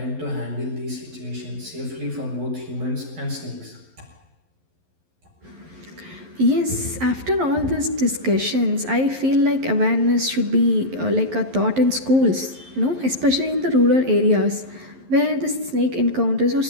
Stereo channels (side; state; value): left; late; 11 ms